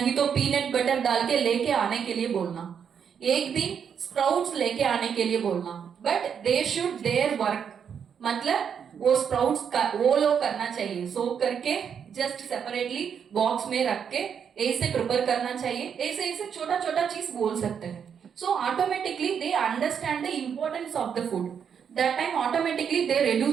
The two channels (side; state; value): left; quieter; 7.5 dB